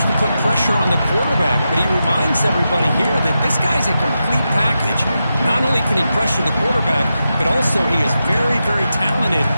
to put pressure on the quarterback, but he reminds everybody here that this guy's a complete package. Not only can he pressure the quarterback, but also he is very, very talented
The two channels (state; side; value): inverted; both; correlation -0.89